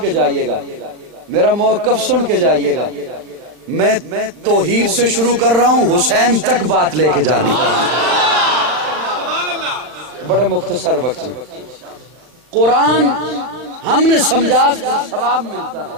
کے جائیے گا، میرا موقف سن کے جائیے گا. میں توحید سے شروع کر رہا ہوں، حسین تک بات لے کے جانی چاہیے. بڑے مختصر وقت میں قرآن ہم نے سمجھا ثواب ملتا ہے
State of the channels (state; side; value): late; left; 40 ms